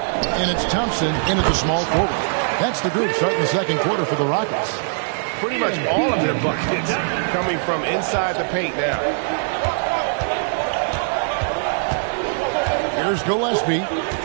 it's Thompson in at the small forward. That's the group starting the second quarter for the Rockets. Pretty much all of their buckets coming from inside the paint now. Here's Gillespie.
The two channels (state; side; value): silent; left; digital silence